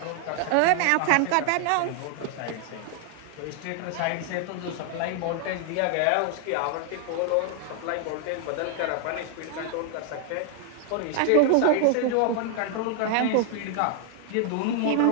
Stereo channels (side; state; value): both; different; correlation 0.00